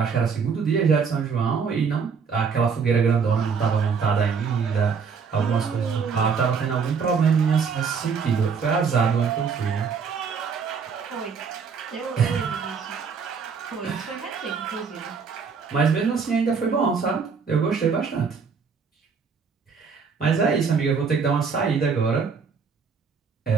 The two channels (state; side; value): quieter; left; 5.8 dB